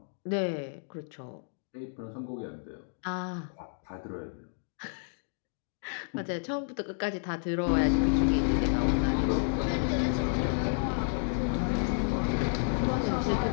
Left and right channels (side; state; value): right; silent; digital silence